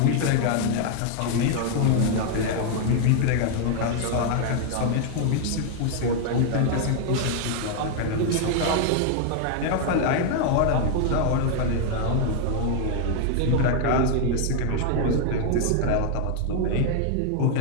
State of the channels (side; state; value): both; different; correlation 0.00